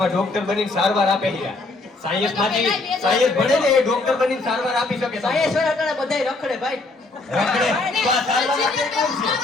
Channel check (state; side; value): quieter; right; 3.3 dB